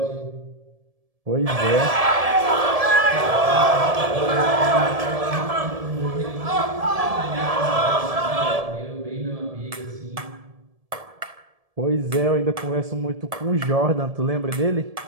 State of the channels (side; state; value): left; late; 1.7 ms